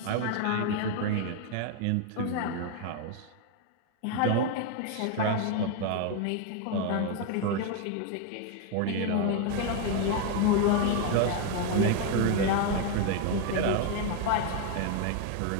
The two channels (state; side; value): different; both; correlation 0.01